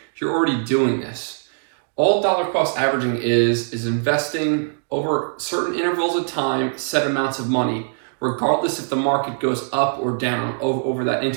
you're already doing this. All dollar cost averaging is investing over certain intervals of time, set amounts of money, regardless if the market goes up or down over that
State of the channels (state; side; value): silent; left; digital silence